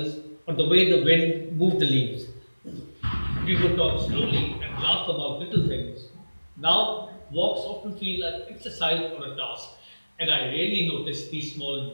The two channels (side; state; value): both; inverted; correlation -1.00